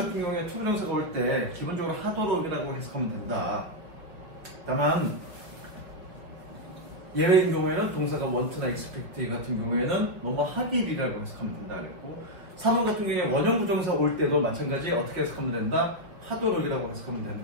경우에 투부정사가 올 때 기본적으로 하도록이라고 해석하면 된다. 다만 예외인 경우에는 동사가 want나 expect 같은 경우에는 뭐뭐 하길이라고 해석하면 된다 그랬고, 3번 같은 경우에 원형 부정사 올 때도 마찬가지 어떻게 해석하면 된다? 하도록이라고 해석하면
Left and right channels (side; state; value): left; late; 5.2 ms